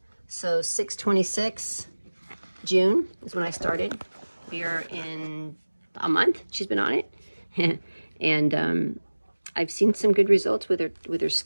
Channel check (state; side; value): inverted; both; correlation -1.00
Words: so 6/26 June is when I started. We're in a month she's been on it. And I've seen some good results with her